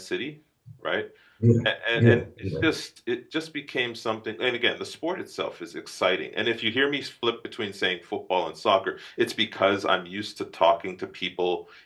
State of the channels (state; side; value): identical; both; correlation 1.00